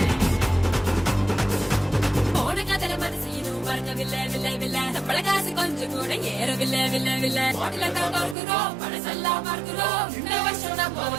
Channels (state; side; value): drops out; left; at 8.3 s